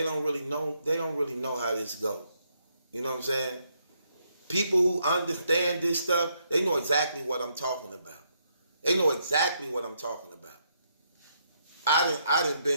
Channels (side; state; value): both; inverted; correlation -0.75